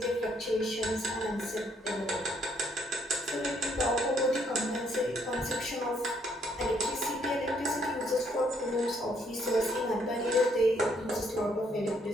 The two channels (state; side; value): normal; both; correlation 0.69